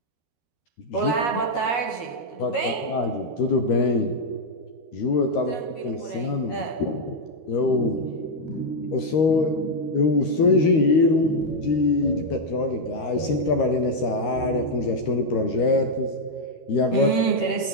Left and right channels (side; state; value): right; late; 13 ms